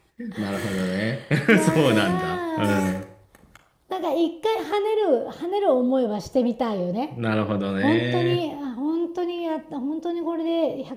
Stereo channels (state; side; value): identical; both; correlation 1.00